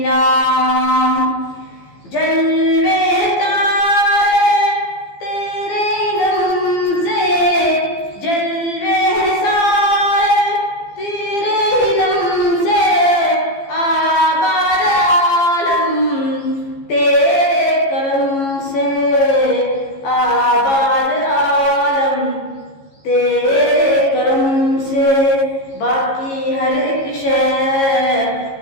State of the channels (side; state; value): right; late; 15 ms